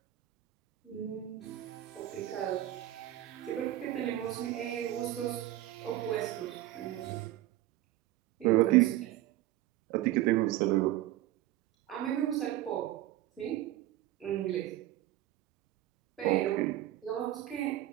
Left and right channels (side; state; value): left; quieter; 14.6 dB